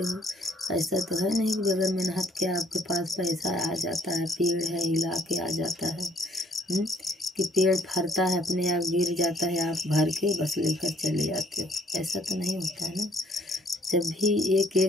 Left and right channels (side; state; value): both; normal; correlation 0.63